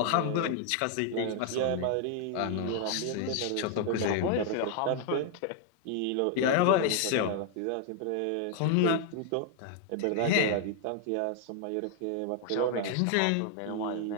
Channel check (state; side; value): different; both; correlation 0.00